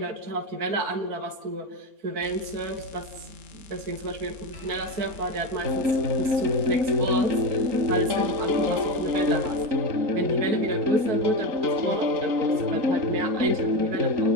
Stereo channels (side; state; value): left; late; 4.5 ms